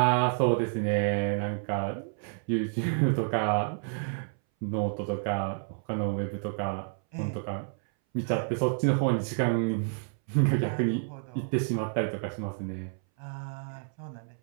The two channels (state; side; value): silent; left; 58 dB below the other